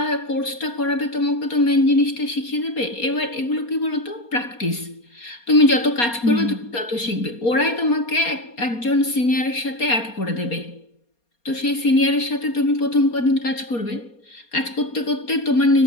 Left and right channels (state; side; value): late; right; 4.3 ms